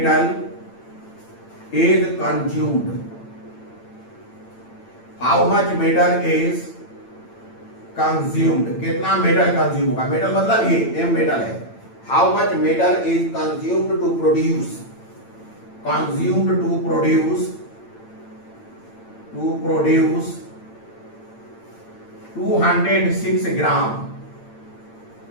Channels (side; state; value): right; late; 8.9 ms